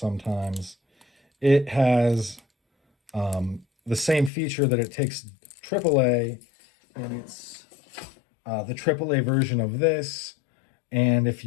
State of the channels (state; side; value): drops out; right; at 4.3 s